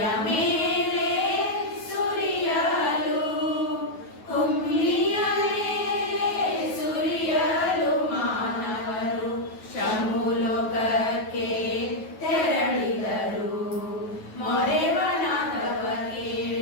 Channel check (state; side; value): late; right; 9.3 ms